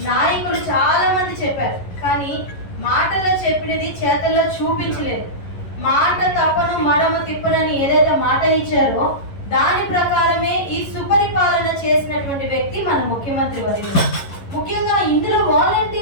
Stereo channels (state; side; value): late; right; 11 ms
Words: నాయకులు చాలా మంది చెప్పారు, కానీ మాటల్లో చెప్పినది చేతల్లో చూపించలేదు. మాట తప్పను మడమ తిప్పనని ఏదైతే మాట ఇచ్చారో దాని ప్రకారమే ఈ సుపరిపాలన చేసినటువంటి వ్యక్తి మన ముఖ్యమంత్రి వర్యులు. ముఖ్యంగా ఇందులో